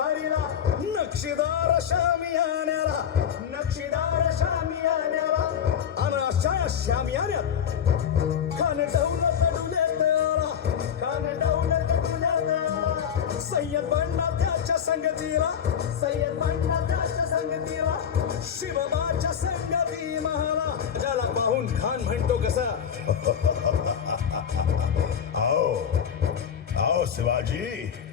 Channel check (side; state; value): right; quieter; 8.3 dB